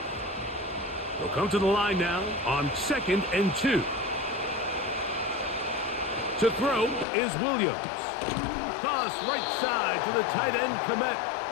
They'll come to the line now on 2nd and 2. To throw is Williams. Toss right side to the tight end, Komet.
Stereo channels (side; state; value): right; drops out; at 7.1 s